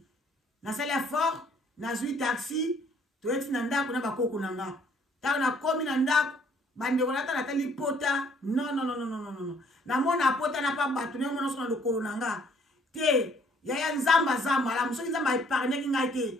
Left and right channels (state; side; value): normal; both; correlation 0.62